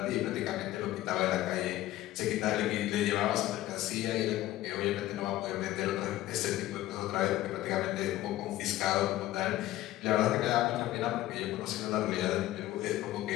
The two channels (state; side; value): quieter; right; 15.3 dB